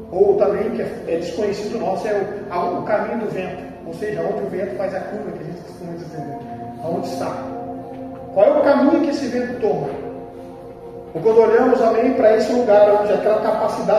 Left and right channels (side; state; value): both; identical; correlation 1.00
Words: Ou também, que é desconhecido nosso, é o caminho do vento, ou seja, onde o vento faz a curva, que a gente costuma dizer, aonde está. Qual é o caminho que esse vento toma? Ou quando olhamos, para esse lugar, onde aquela